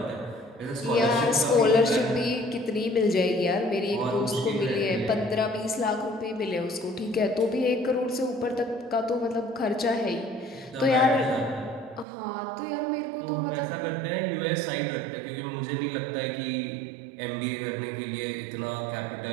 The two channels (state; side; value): drops out; left; at 12.1 s